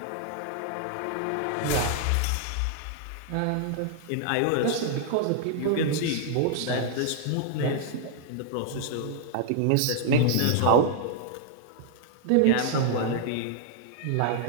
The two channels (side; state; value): both; different; correlation -0.01